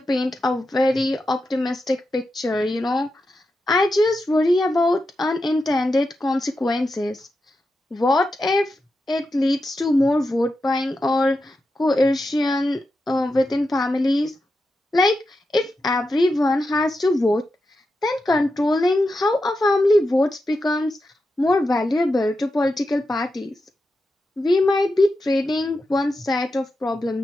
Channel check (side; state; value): both; normal; correlation 0.88